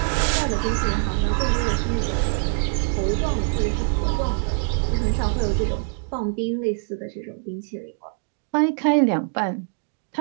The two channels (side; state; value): left; silent; 63 dB below the other